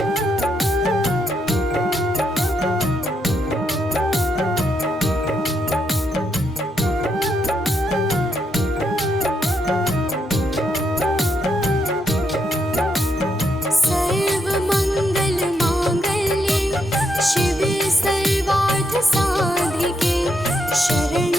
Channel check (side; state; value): both; normal; correlation 0.78